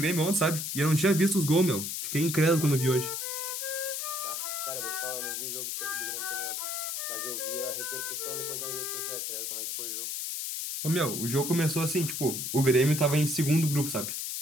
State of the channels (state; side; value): noise; left; hiss, 3 dB below the sound